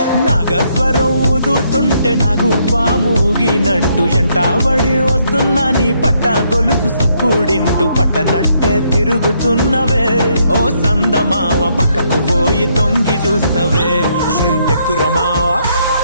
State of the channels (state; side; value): inverted; both; correlation -0.73